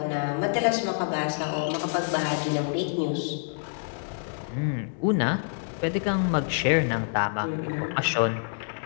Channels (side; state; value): right; silent; digital silence